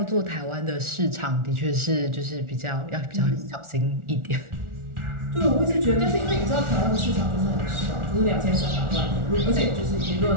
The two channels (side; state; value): left; late; 1.4 ms